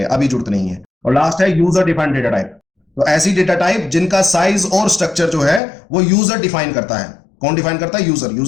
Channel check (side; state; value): right; drops out; at 5.6 s